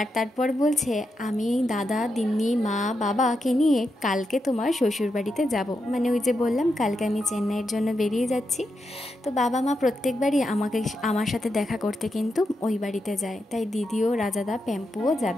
তারপর বলছে আমি দাদা দিম্মি মা বাবাকে নিয়ে কালকে তোমার শ্বশুরবাড়িতে যাব। মানে ওই যে বললাম কালকে আমি চেন্নাইয়ের জন্য বেরিয়ে যাচ্ছি। তো বাবা মা প্রত্যেকবারই আমার সাথে দেখা করতে কিন্তু ওই বাড়িতে যায়, তাই দিদিও রাজাদা প্যাম্পুও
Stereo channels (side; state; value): both; normal; correlation 0.85